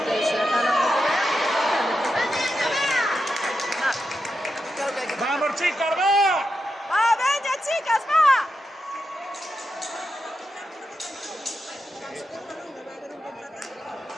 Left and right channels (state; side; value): normal; both; correlation 0.87